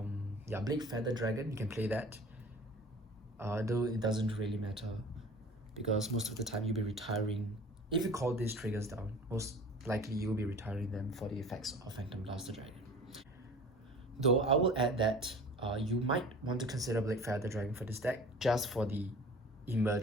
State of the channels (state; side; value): normal; both; correlation 0.42